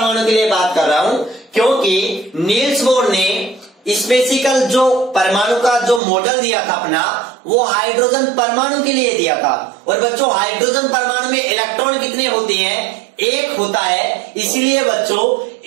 के लिए बात कर रहा हूं, क्योंकि नील्स बोर ने स्पेसिकल जो परमाणु का जो मॉडल दिया था अपना, वो हाइड्रोजन परमाणु के लिए दिया था। और बच्चों हाइड्रोजन परमाणु में इलेक्ट्रॉन कितने होते हैं, 1 होता है। इसलिए बच्चों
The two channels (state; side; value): drops out; left; at 6.0 s